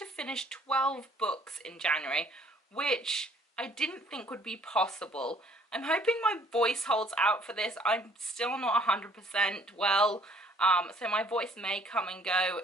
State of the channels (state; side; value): normal; both; correlation 0.59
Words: finish 12 books in January, which I didn't think would be possible. I'm hoping my voice holds out for this. I'm still not 100% well. So my voice may come and go